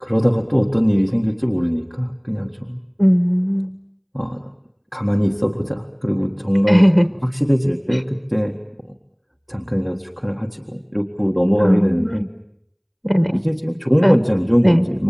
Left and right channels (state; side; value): identical; both; correlation 1.00